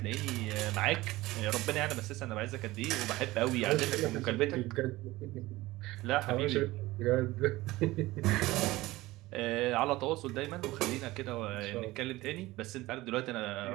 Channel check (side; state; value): left; quieter; 18.7 dB